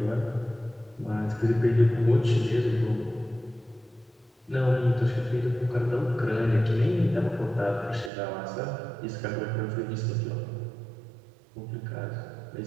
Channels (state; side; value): drops out; left; at 8.1 s